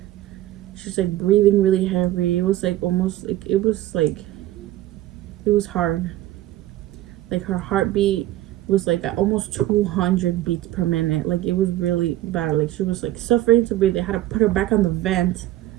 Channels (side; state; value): left; quieter; 15.0 dB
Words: she's like breathing really heavy. It was like almost like it was hard. Like her heartbeat was like at almost 200 beats per minute. Like it was really bad. Like she was like suffering to breathe. They had to put her back on the vent.